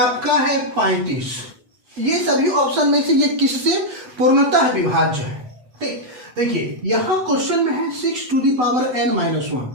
है 35। ये सभी ऑप्शन में से ये किससे पूर्णतः विभाज्य है? ठीक, देखिए यहां क्वेश्चन में है 6 to the power n minus 1।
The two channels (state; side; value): late; left; 8.0 ms